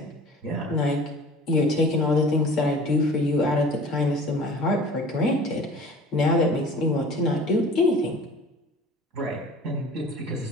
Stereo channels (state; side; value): normal; both; correlation 0.44